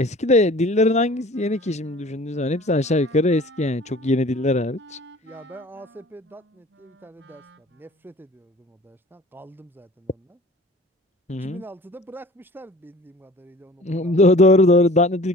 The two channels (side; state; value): both; normal; correlation 0.46